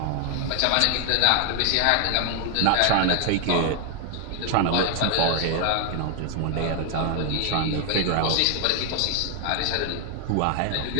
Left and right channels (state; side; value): different; both; correlation 0.00